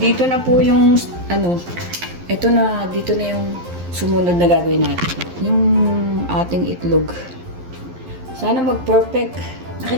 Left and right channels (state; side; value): late; left; 11 ms